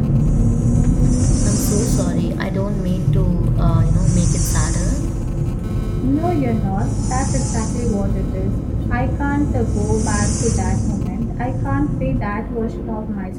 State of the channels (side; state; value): both; identical; correlation 1.00